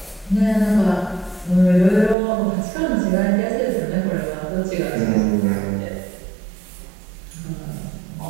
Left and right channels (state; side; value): drops out; left; at 2.1 s